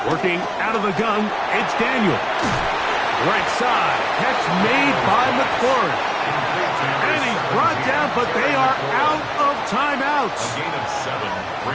Working out of the gun, it's Daniel. Right side, catch made by McLaurin. And he's brought down, but they are out of timeouts. A gain of 7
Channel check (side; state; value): both; identical; correlation 1.00